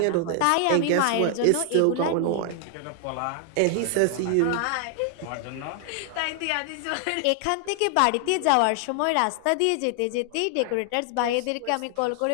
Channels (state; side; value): different; both; correlation 0.00